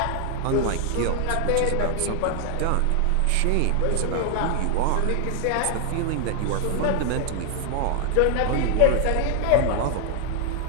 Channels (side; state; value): both; different; correlation 0.00